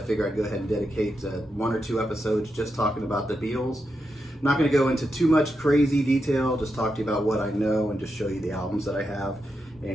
figure I'd go ahead and dedicate one or two episodes just talking about the Beatles. I'm not going to go into too much crazy detail, just talk to you about what I know and just show you the albums that I have.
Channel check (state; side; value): normal; both; correlation 0.86